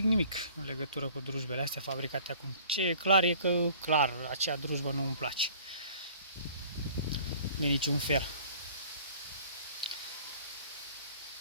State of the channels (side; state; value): both; inverted; correlation -0.51